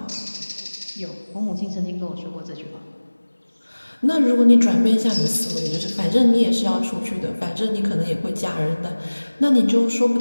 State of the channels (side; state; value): both; inverted; correlation -1.00